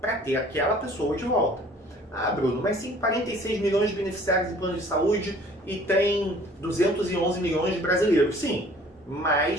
ter aquela pessoa de volta? Ah, Bruno, mas tem 46 milhões de beneficiários em plano de saúde e tem 211 milhões de brasileiros. Sim,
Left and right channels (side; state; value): both; normal; correlation 0.53